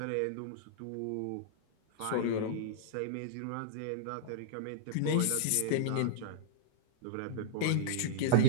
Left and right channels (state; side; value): different; both; correlation -0.02